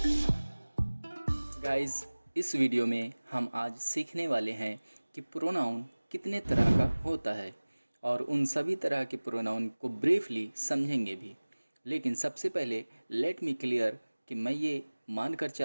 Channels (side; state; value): both; inverted; correlation -1.00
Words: गाइस, इस वीडियो में हम आज सीखने वाले हैं कि प्रोनाउन कितने तरह का होता है और उन सभी तरह के प्रोनाउन को ब्रीफली समझेंगे भी। लेकिन सबसे पहले लेट मी क्लियर कि मैं ये मानकर